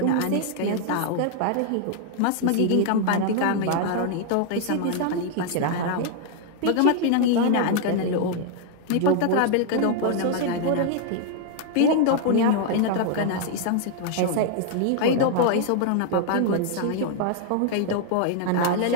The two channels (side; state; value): both; different; correlation 0.00